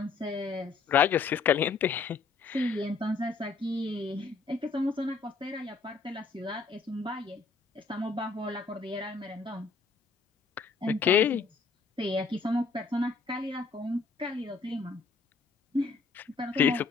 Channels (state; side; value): quieter; right; 4.7 dB